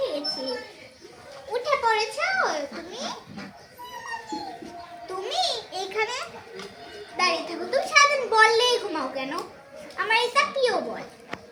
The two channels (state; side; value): identical; both; correlation 1.00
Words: গেছে। উঠে পড়েছো তুমি? তুমি এইখানে দাঁড়িয়ে থাকো। তুমি সারাদিন বললেই ঘুমাও কেন? আমার এটা প্রিয় বল।